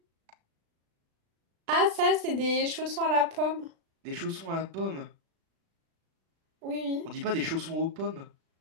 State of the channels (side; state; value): left; late; 36 ms